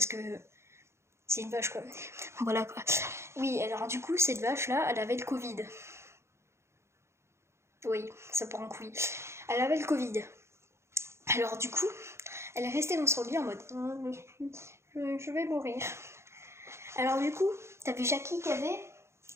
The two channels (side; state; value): left; late; 0.13 ms